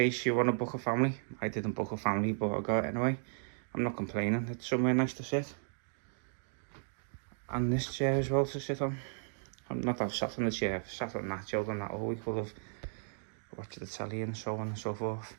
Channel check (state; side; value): silent; left; digital silence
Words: you want to book a family. I didn't book a family, but I got it anyway. I'm not complaining, it's somewhere nice to sit. And this chair as well to sit on. I'm not I've sat on the chair, I've sat on that, chilled on that all week, full of watch the telly and so on and so forth.